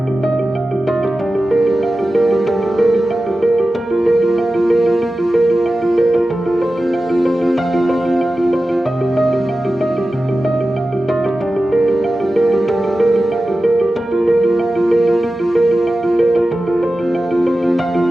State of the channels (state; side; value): normal; both; correlation 0.94